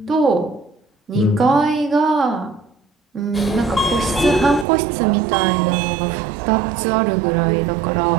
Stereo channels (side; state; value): left; drops out; at 4.7 s